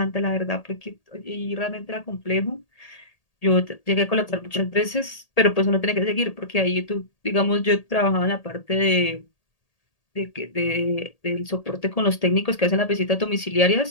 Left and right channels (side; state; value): right; late; 1.8 ms